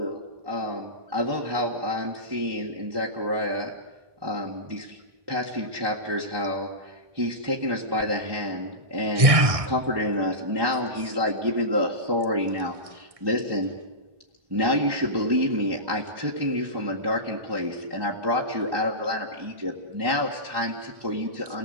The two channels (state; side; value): late; left; 1.6 ms